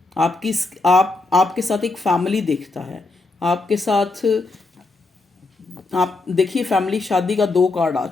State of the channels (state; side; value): quieter; right; 3.3 dB